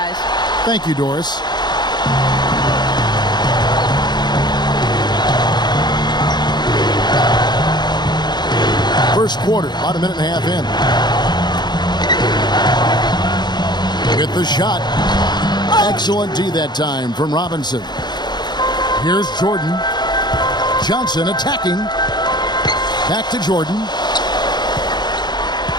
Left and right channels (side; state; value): right; late; 0.21 ms